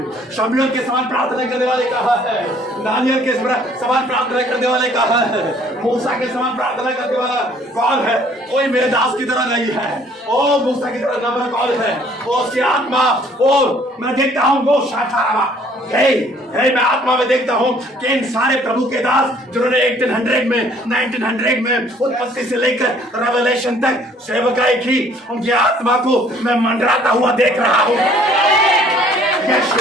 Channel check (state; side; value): normal; both; correlation 0.59